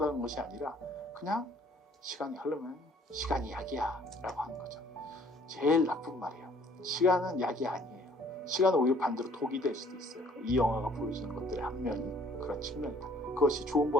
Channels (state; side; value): normal; both; correlation 0.58